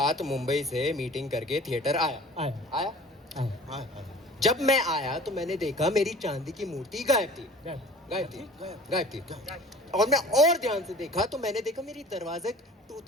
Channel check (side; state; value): both; normal; correlation 0.45